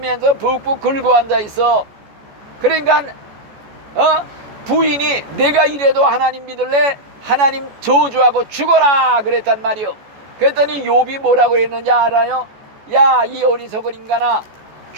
푹푹 긁고 앉아있어. 그러니까 부인이 내가 이래도 하나님 믿을래? 하나님 저주하고 죽어라 그랬단 말이요. 그랬더니 욥이 뭐라고 했는지 알아요? 야, 이 어리석은 인간아,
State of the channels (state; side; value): late; left; 14 ms